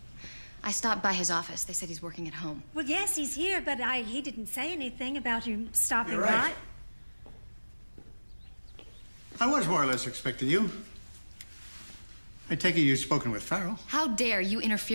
I stopped by his office. They said he's working at home. Well, yes, he's here, but he didn't say anything about you stopping You're right. by. I was more or less expecting you. I take it you've spoken with Farrell. How dare you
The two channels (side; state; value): both; inverted; correlation -1.00